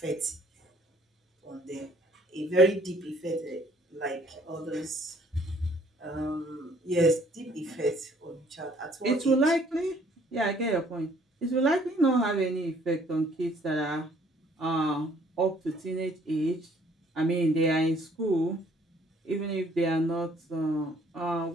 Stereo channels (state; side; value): normal; both; correlation 0.61